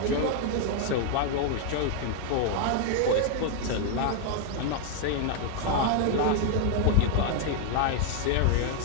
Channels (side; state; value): both; different; correlation 0.01